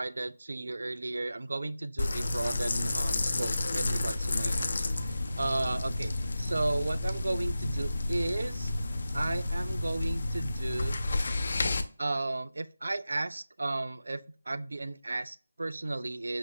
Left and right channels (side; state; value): both; inverted; correlation -0.93